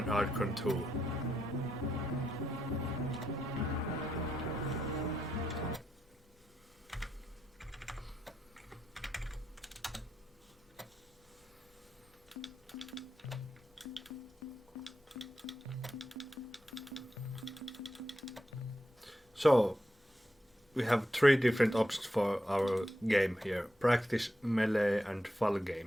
Archon 2. So, we have three different options for our game here: practice, melee and full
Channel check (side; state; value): both; normal; correlation 0.85